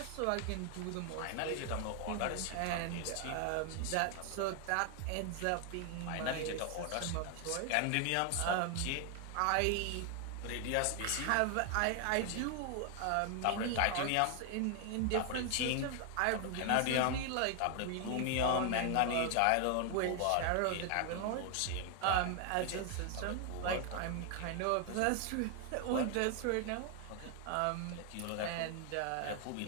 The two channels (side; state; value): both; different; correlation 0.00